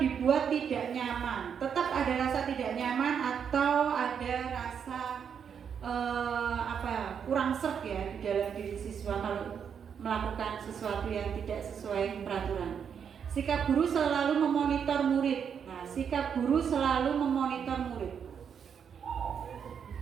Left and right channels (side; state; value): left; quieter; 7.4 dB